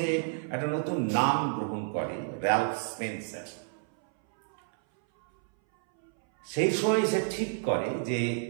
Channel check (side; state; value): left; silent; 58 dB below the other